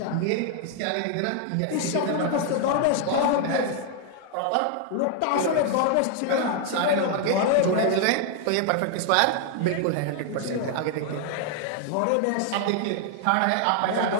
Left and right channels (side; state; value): both; different; correlation 0.00